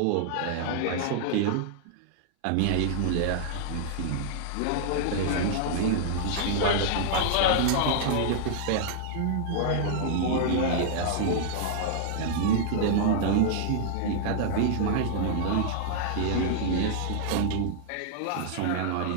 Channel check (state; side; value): different; both; correlation -0.01